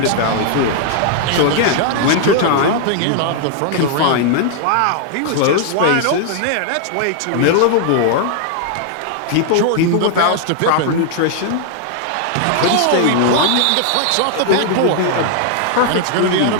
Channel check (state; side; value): different; both; correlation 0.00